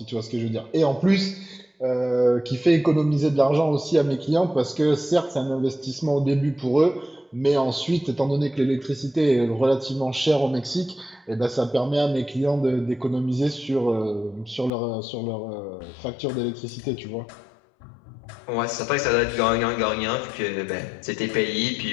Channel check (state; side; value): drops out; right; at 14.7 s